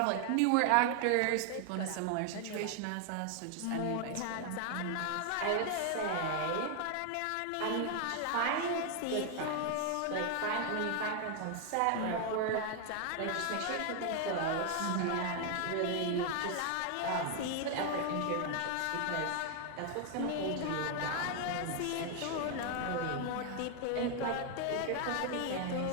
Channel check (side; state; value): both; different; correlation 0.00